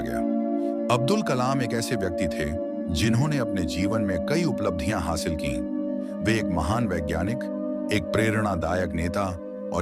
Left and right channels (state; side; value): identical; both; correlation 1.00